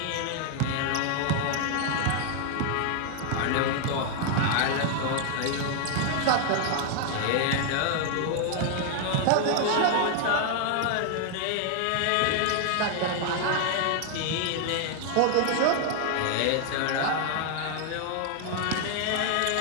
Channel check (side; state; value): both; different; correlation 0.00